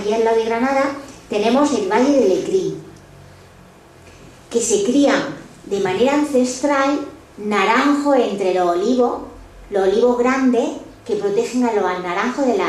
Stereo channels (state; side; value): identical; both; correlation 1.00